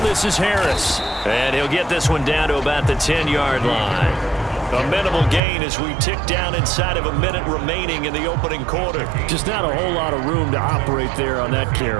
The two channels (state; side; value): drops out; left; at 5.4 s